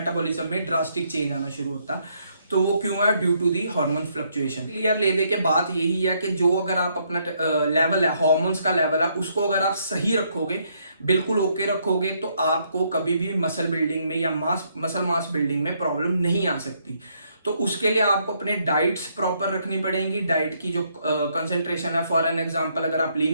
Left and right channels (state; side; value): inverted; both; correlation -0.72